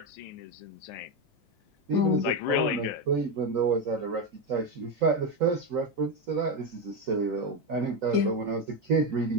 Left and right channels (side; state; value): both; normal; correlation 0.10